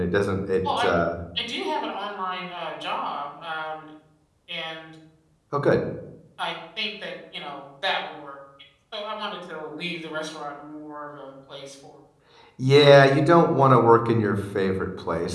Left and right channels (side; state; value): both; identical; correlation 1.00